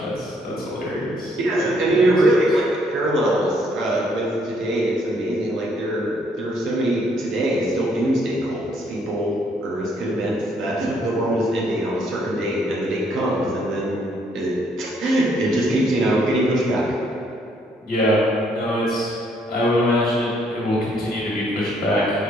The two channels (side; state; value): both; normal; correlation 0.68